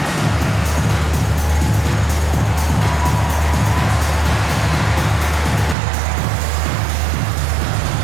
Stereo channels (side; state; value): left; drops out; at 5.8 s